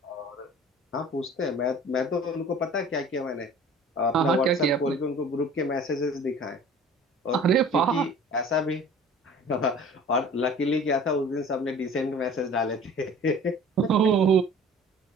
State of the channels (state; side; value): normal; both; correlation 0.45